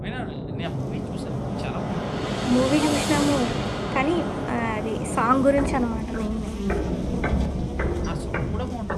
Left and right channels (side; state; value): both; identical; correlation 1.00